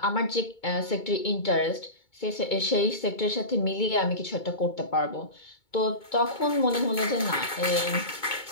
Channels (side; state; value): right; late; 2.2 ms